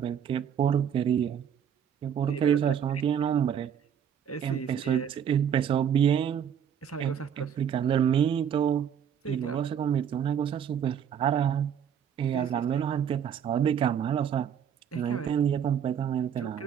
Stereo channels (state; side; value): quieter; left; 8.5 dB